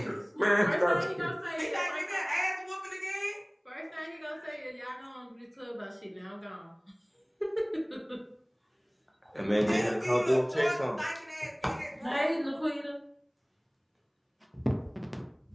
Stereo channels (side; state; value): both; identical; correlation 1.00